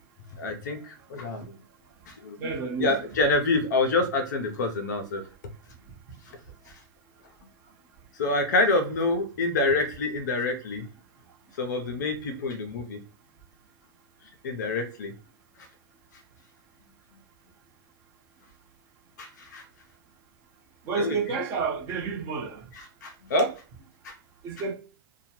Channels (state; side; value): normal; both; correlation -0.13